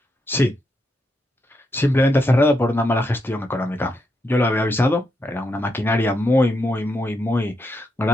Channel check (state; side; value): normal; both; correlation 0.82